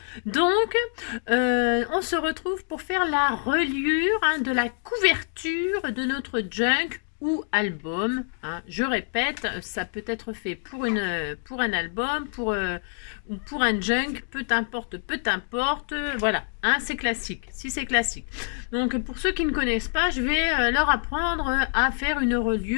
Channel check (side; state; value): right; silent; digital silence